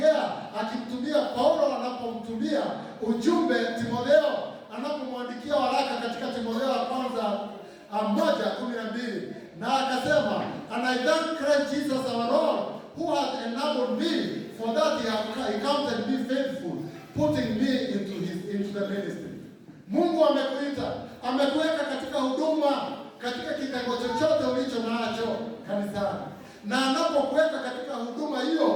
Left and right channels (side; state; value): both; identical; correlation 1.00